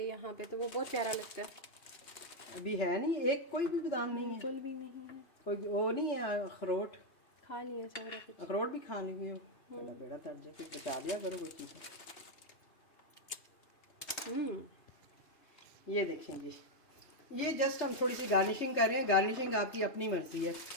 तो वो बहुत प्यारा लगता है। अभी है नहीं, एक कोई भी बादाम नहीं है, बिल्कुल भी नहीं है। कोई वो नहीं है। अखरोट खा लिया सारा कुछ। अखरोट भी खा ली हो, बड़ा बेड़ा तट जाए, कुछ बचा दिया करो कोई चीज़। ये देखें जी, ये जस्ट हम थोड़ी सी गार्निशिंग कर रहे हैं। गार्निशिंग आपकी अपनी मर्जी है।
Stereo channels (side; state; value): right; late; 2.9 ms